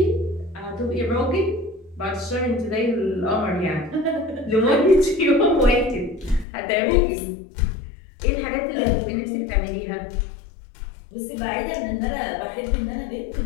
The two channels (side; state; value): right; drops out; at 6.5 s